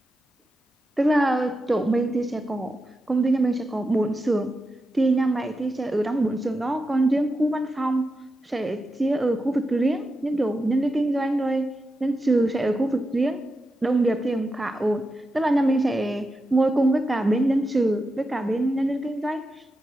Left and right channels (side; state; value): both; normal; correlation 0.89